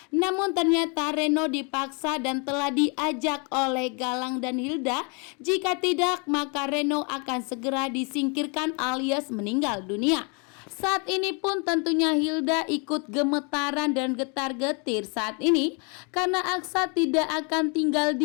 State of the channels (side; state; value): right; quieter; 34.7 dB